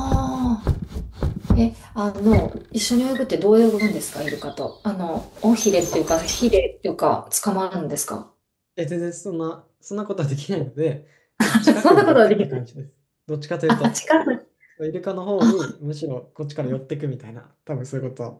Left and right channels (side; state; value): both; identical; correlation 1.00